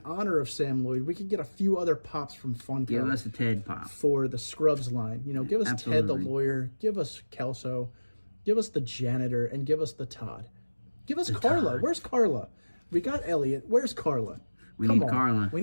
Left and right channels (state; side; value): inverted; both; correlation -1.00